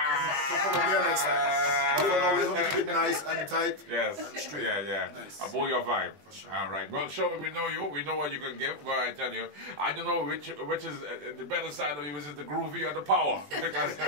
next time. But for now, we're going to keep it nice and tight and straight. Yeah. Nice. A boy your vibe. For sure. All right. Well, Shurwayne, we know you. We know what you can give. But I tell you, I don't know which is the better side of you. Is it the groovy or the power? Because,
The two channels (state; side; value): late; left; 20 ms